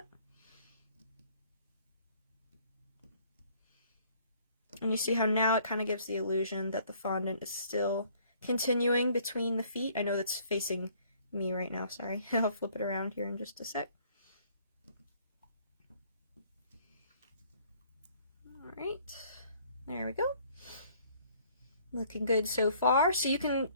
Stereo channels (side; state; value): both; inverted; correlation -0.60